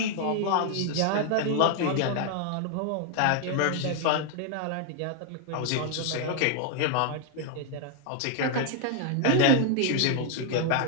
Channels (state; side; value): different; both; correlation 0.00